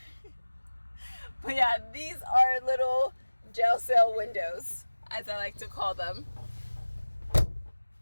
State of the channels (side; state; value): both; inverted; correlation -1.00